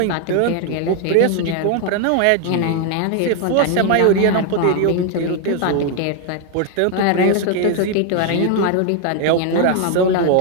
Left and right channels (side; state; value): both; different; correlation 0.00